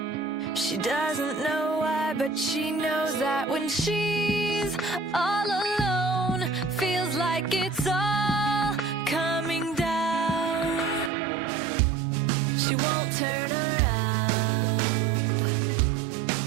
She doesn't know why, but she knows that when she's all alone, feels like it's all coming down. She won't turn around.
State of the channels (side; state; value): left; drops out; at 11.1 s